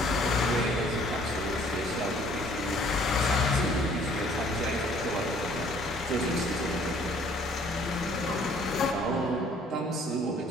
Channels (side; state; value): both; normal; correlation 0.58